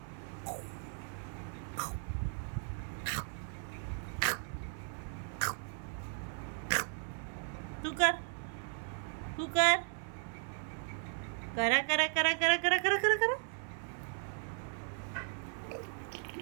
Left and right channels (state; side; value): silent; left; 53 dB below the other